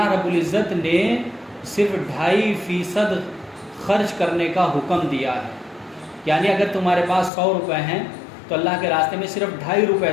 رب العزت نے صرف 2.5% خرچ کرنے کا حکم دیا ہے، یعنی اگر تمہارے پاس 100 روپے ہیں تو اللہ کے راستے میں صرف 2.5 روپے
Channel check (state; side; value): drops out; right; at 7.3 s